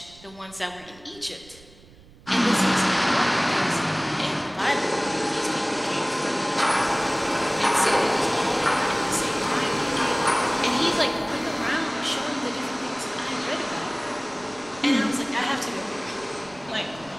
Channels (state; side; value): noise; right; rumble, 23 dB below the sound